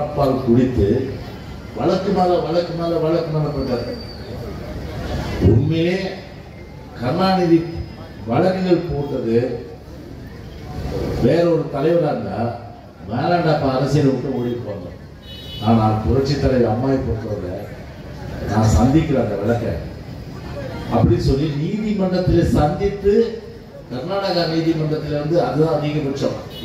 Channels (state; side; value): identical; both; correlation 1.00